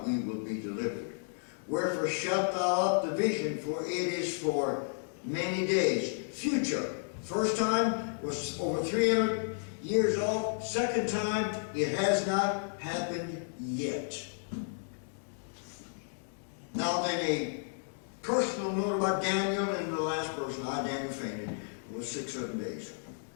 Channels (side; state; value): right; silent; digital silence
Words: we will be delivered. Wherefore shalt thou up the vision, for it is for many days. Future. First time was over 300 years old. Second time, it has not happened yet. Now then, a personal note about Daniel, and the last person, Daniel, fainted, was 6-7 days.